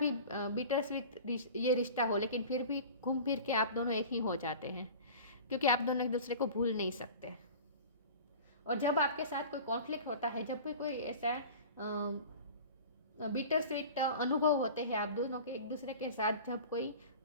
बिटर स्वीट ये रिश्ता हो, लेकिन फिर भी घूम फिर के आप दोनों एक ही हो जाते हैं, क्योंकि आप दोनों एक दूसरे को भूल नहीं सकते। और जब आपके साथ कोई कॉन्फ्लिक्ट होता है, जब भी कोई ऐसा बिटर स्वीट अनुभव होते हैं आप दोनों के एक दूसरे के साथ, जब कोई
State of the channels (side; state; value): both; inverted; correlation -0.39